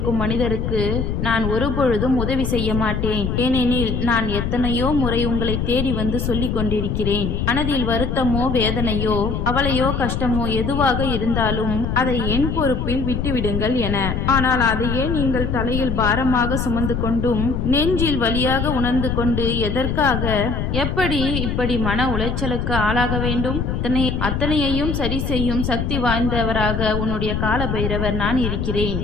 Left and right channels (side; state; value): left; noise; rumble, 1 dB below the sound